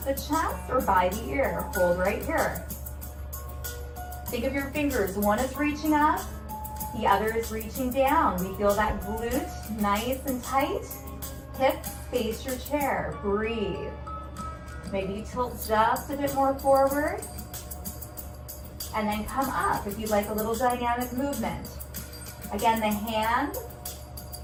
the chest or by the ear. Hold right here. Think of your fingers. One is reaching up, the other is reaching down. We feel that glute nice and tight. Hips face your chair. Breathe. Maybe tilt just a bit more forward. And then come up if you'd like a little dynamic movement. Again, the hand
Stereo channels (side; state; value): both; identical; correlation 1.00